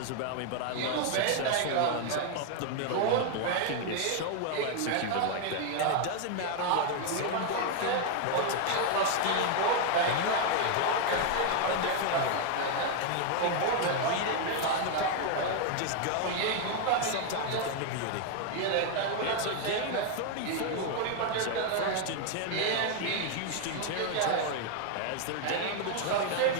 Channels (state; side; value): different; both; correlation 0.00